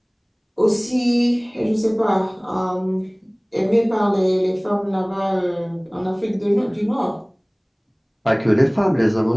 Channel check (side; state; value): both; identical; correlation 1.00